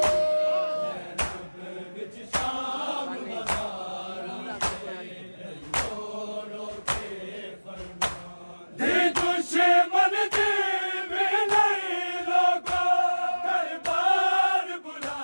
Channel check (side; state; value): both; inverted; correlation -1.00